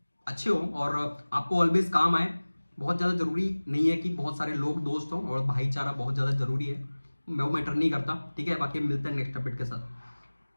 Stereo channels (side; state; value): both; inverted; correlation -1.00